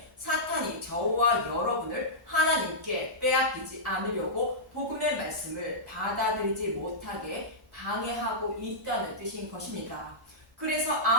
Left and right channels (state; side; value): normal; both; correlation -0.13